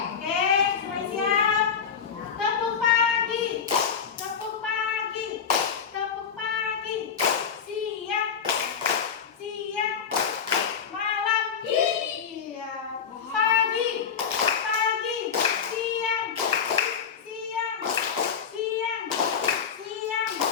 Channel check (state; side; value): quieter; right; 7.1 dB